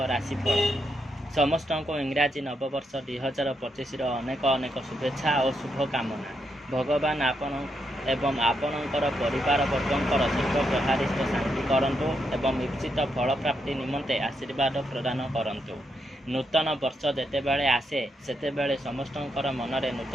राशिफल। समस्त को इंग्राजी नववर्ष 2025 अनेक अनेक शुभेच्छा और शुभकामना। भगवान आपण एवं आपणकर परिवार वर्गंकर सर्वप्रहारिष्ट शांति करंतु एवं इप्सित फल प्राप्ति निमंते आशीर्वाद प्रदान करंतु। नूतन वर्ष जेतेबेले आसे सेतेबेले समस्तंकर मनरे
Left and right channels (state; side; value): normal; both; correlation 0.80